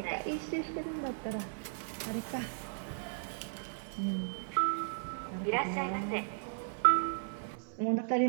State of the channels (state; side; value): silent; left; 54 dB below the other